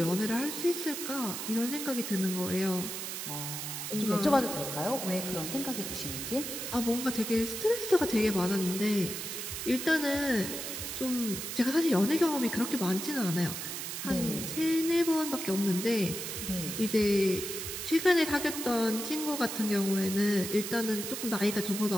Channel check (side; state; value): right; noise; hiss, 5 dB below the sound